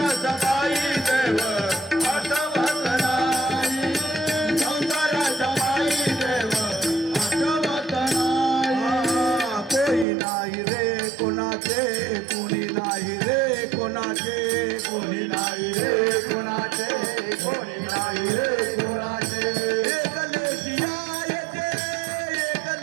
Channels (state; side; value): drops out; left; at 10.1 s